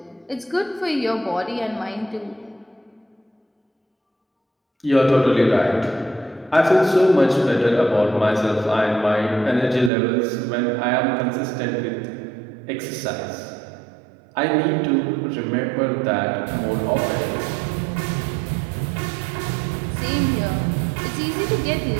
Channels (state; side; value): drops out; left; at 9.9 s